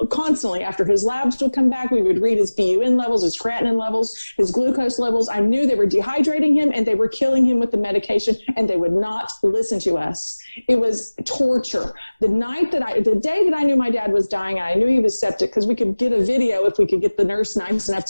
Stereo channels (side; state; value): both; inverted; correlation -1.00